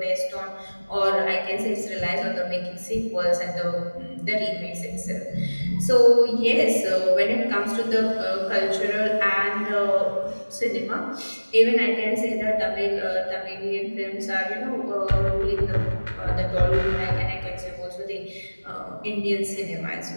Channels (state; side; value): inverted; both; correlation -1.00